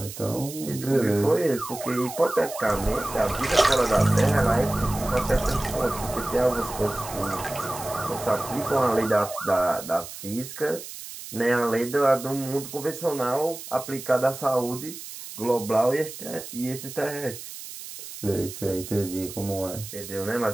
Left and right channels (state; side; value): noise; right; hiss, 12 dB below the sound